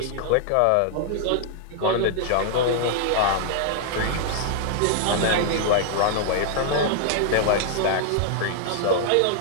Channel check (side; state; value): both; different; correlation 0.00